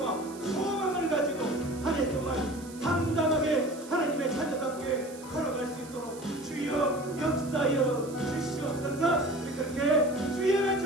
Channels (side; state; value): right; noise; hiss, 19 dB below the sound